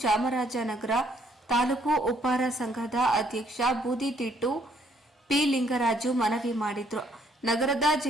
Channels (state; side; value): normal; both; correlation 0.67